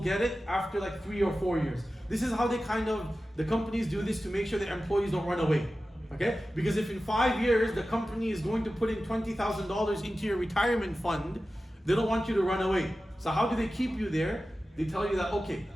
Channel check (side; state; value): both; normal; correlation 0.94